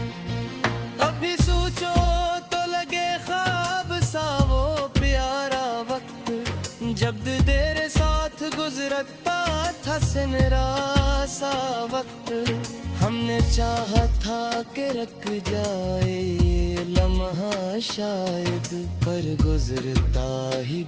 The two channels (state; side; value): identical; both; correlation 1.00